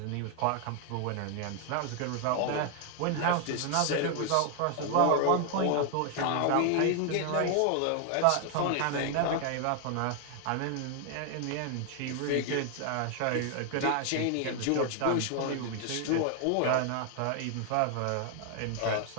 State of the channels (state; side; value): different; both; correlation 0.00